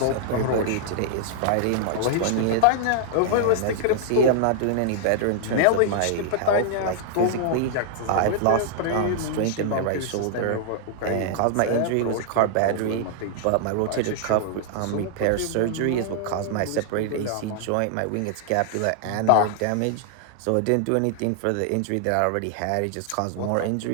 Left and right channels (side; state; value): both; different; correlation -0.01